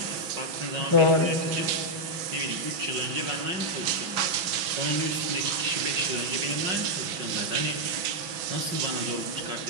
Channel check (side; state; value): left; late; 6.1 ms